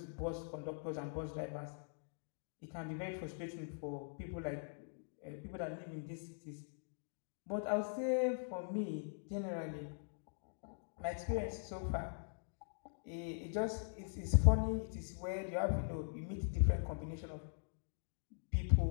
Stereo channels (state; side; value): silent; right; digital silence